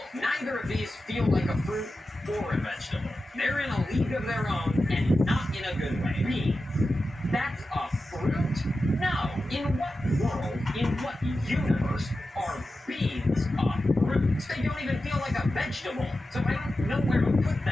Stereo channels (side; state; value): both; normal; correlation 0.92